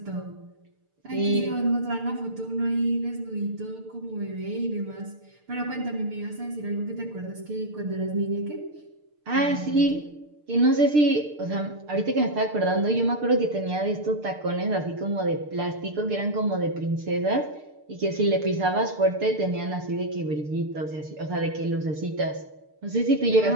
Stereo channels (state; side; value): late; left; 6.7 ms